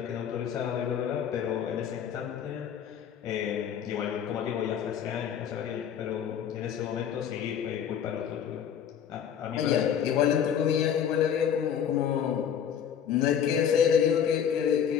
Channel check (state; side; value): quieter; right; 8.5 dB